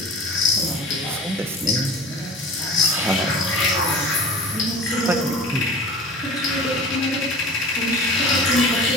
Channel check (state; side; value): normal; both; correlation 0.39